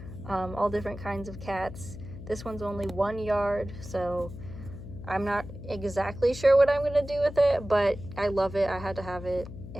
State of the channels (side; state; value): left; noise; hum, 12 dB below the sound